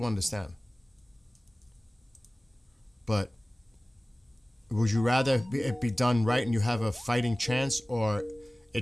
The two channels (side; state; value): both; normal; correlation 0.98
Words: understand. But would you rather it be done right and you have a fighting chance, or